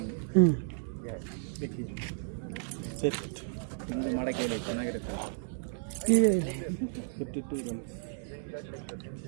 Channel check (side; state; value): left; silent; digital silence